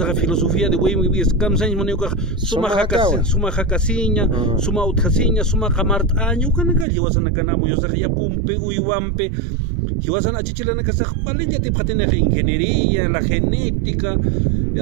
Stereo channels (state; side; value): drops out; left; at 6.9 s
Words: filosofía de wey mi kamsan monioka suma hakasiña suma utkasiña suma kamart año kanaka hiwasan kan amoyosaja ya pumpe uywampe hiwasan achichilana kasaj palilla te patene ingeniería la genética